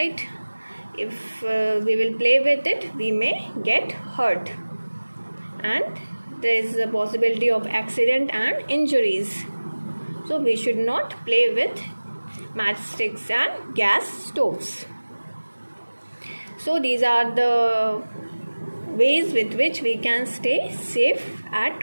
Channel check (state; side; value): inverted; both; correlation -1.00